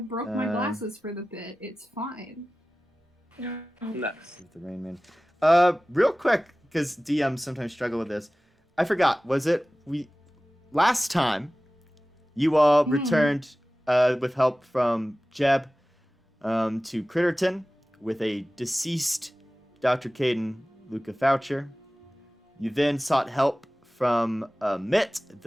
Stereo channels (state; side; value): normal; both; correlation 0.97